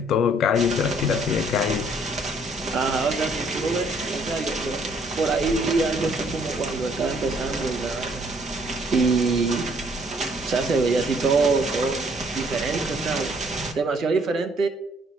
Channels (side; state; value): both; normal; correlation 0.63